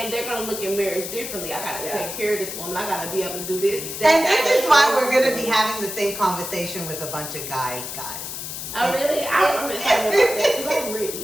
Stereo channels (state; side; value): noise; left; hiss, 7 dB below the sound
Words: they're gonna look at marriage differently. I gotta take care of this woman. I gotta be able to do this. And this is why we're gonna be having the same conversation with a bunch of guys. Oh really? I'm excited about that because I'm